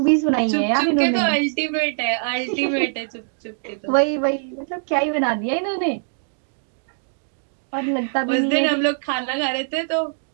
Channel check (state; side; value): silent; left; digital silence